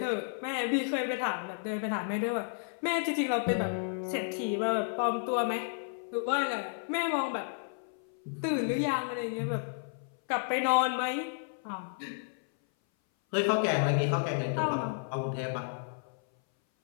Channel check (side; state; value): right; silent; 56 dB below the other